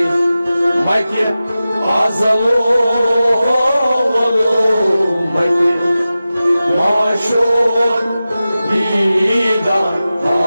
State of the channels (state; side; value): inverted; both; correlation -0.95